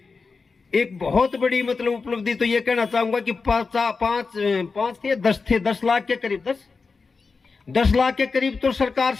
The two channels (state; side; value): quieter; right; 4.6 dB